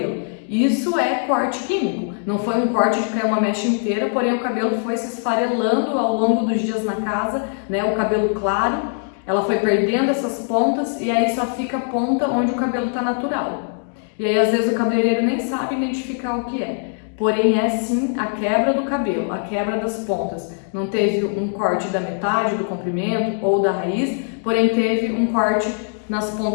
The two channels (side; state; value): right; silent; 62 dB below the other